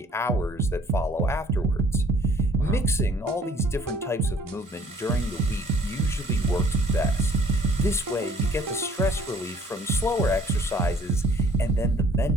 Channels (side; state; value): both; normal; correlation 0.57